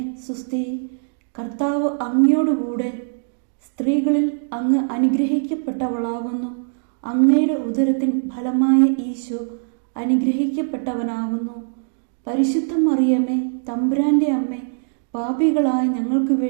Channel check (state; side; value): silent; left; digital silence